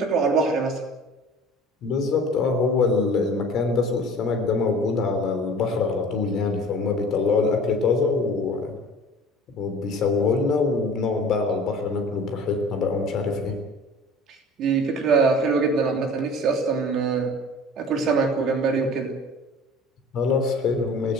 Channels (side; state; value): both; normal; correlation 0.43